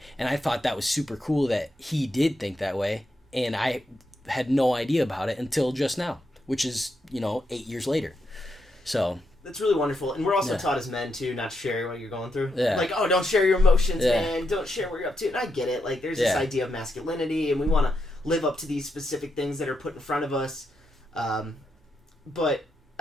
and I thought that was super cool that he did think that way, and I had no idea about it until just now, which is 8 years later. So That's really wonderful. And we're also Yeah. taught as men, too, not to share what you're going through. Yeah. Like, oh, don't share your emotions, Yeah. man. Don't share what you're up to. And I get it. Like, there's this Yeah. idea of masculinity, and we want to live up to these specific things that are put in front of us. But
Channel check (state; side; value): normal; both; correlation 0.83